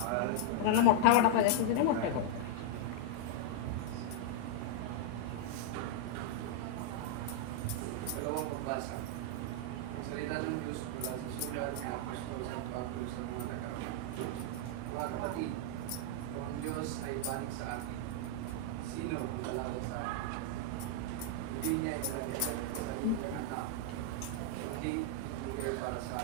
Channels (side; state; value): both; different; correlation -0.01